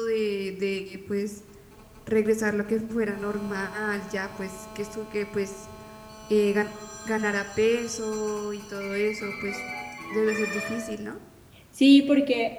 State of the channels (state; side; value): identical; both; correlation 1.00